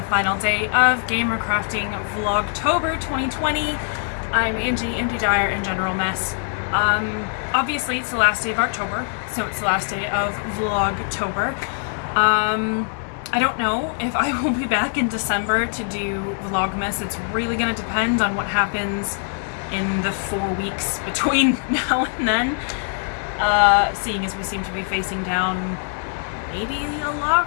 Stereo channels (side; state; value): right; silent; 61 dB below the other